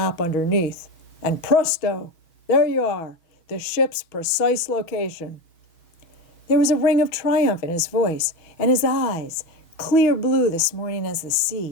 underneath, and presto, there you are, the ship's precise location." There was a ring of triumph in his voice, and his eyes, clear blue this morning as the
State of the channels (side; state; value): right; late; 6.1 ms